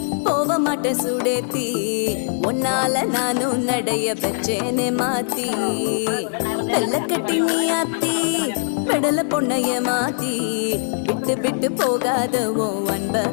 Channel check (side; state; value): right; silent; 64 dB below the other